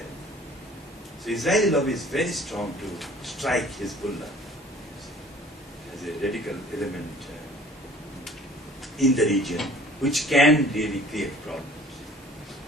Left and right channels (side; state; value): both; normal; correlation 0.51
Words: So Israeli lobby is very strong to strike Hezbollah as a radical element in the region, which can really create problems.